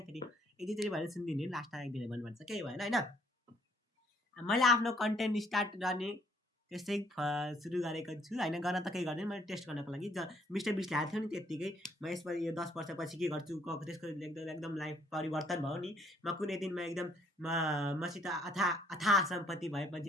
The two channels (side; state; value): both; normal; correlation 0.65